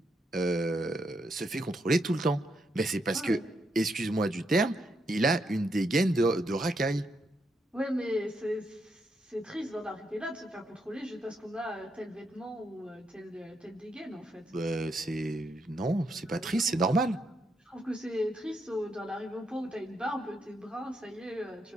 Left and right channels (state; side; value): normal; both; correlation 0.79